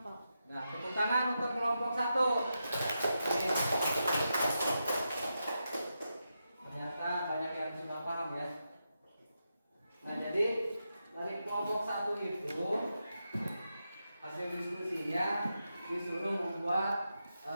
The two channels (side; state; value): both; inverted; correlation -0.87